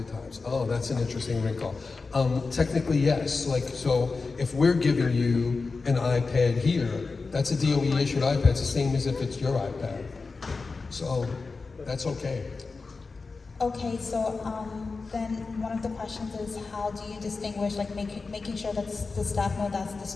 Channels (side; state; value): right; quieter; 4.2 dB